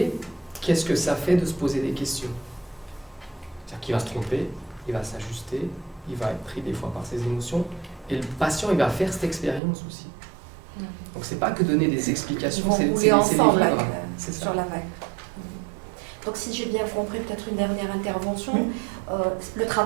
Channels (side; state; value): left; drops out; at 9.6 s